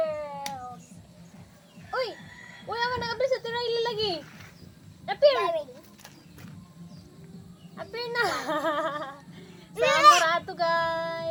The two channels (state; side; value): identical; both; correlation 1.00